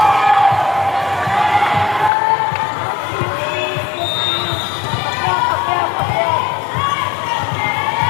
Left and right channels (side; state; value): right; drops out; at 2.1 s